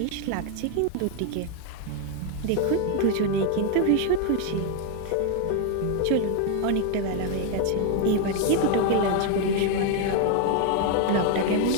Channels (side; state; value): both; different; correlation 0.01